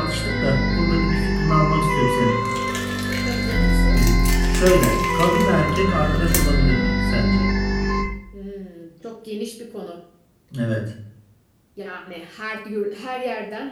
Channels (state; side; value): identical; both; correlation 1.00